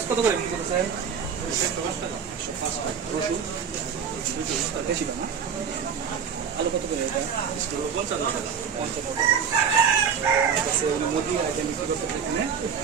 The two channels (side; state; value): left; quieter; 6.9 dB